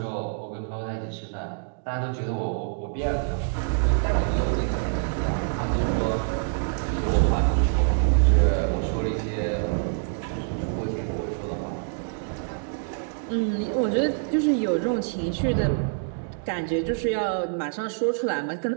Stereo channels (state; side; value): silent; left; digital silence